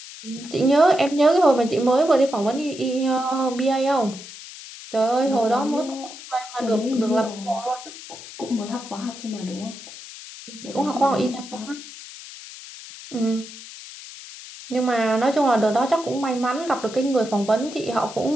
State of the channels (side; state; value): left; noise; hiss, 15 dB below the sound